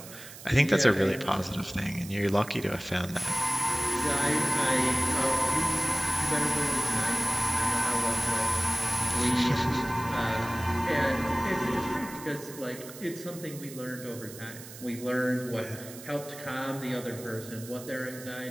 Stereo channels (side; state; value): right; noise; hiss, 15 dB below the sound